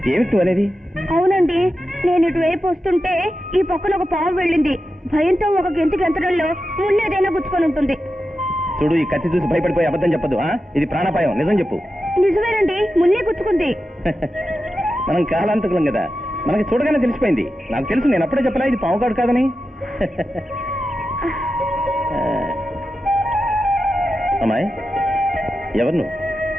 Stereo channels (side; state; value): both; normal; correlation 0.91